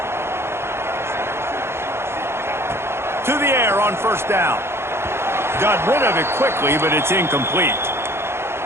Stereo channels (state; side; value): late; left; 0.12 ms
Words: To the air on first down. Got rid of it quickly, but it's incomplete.